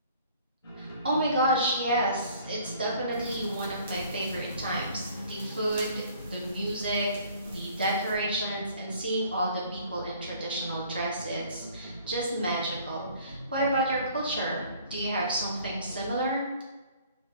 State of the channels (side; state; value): both; inverted; correlation -0.54